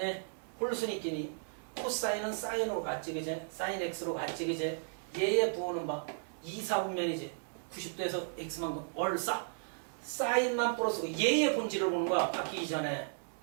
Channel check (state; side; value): silent; left; digital silence